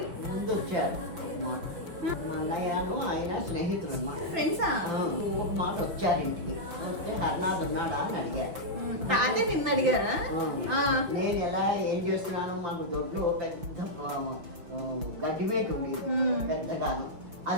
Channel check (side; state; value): left; late; 5.8 ms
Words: ముందు వచ్చారు మాట. మా అన్నయ్యను ఆయన స్నేహితులు అన్నమాట. ఫ్రెండ్సా? ఒక మాట వచ్చారు ఇంటికి. వస్తే హర్నాథ్ ఉన్నాడా అని అడిగారు. తాతయ్య నిన్ను అడిగారా? నేను ఎలా ఏం చేస్తున్నాను, మాకు దొడ్లో పెద్ద గడ్డిమేట ఉండేది పెద్దగాను,